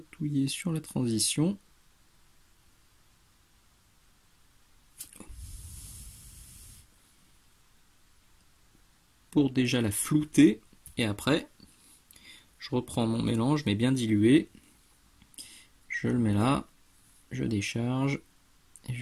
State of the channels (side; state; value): both; identical; correlation 1.00